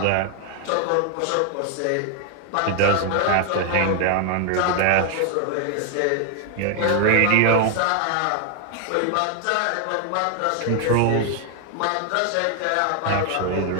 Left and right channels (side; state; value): both; different; correlation 0.00